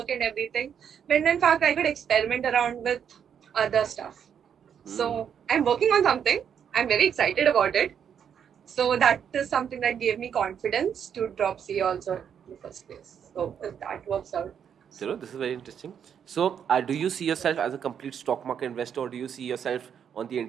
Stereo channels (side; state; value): left; quieter; 8.1 dB